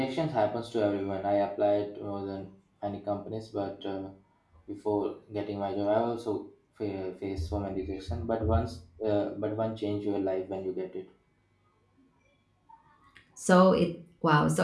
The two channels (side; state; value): both; identical; correlation 1.00